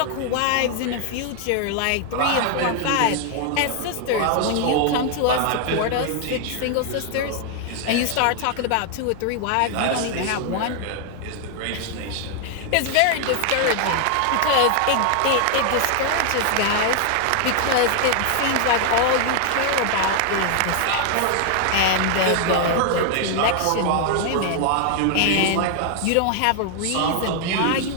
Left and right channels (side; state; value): both; different; correlation 0.00